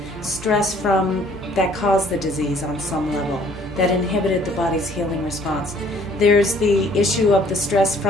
stress that caused the disease on some level, that inhibited the body's healing response. There's the issue of the stress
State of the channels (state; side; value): normal; both; correlation 0.58